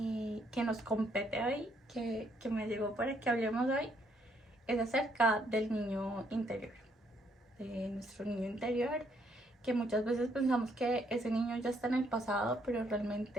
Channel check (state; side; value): normal; both; correlation 0.71